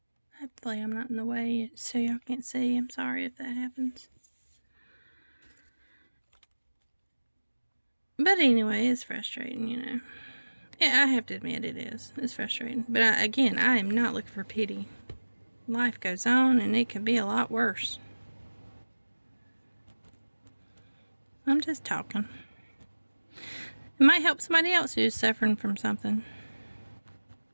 Hopefully I'm not in the way so y'all can't see. I'm sorry if that happens. But anyway, it's frustrating, Yeah, I have to admit it is. It's frustrating. But I am not looking for pity. Life goes on and it could be a lot worse. I'm just talking. It might help somebody else who's suffering from something.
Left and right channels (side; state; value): both; inverted; correlation -1.00